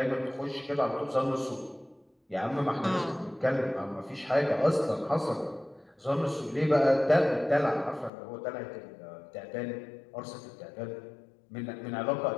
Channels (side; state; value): right; drops out; at 8.1 s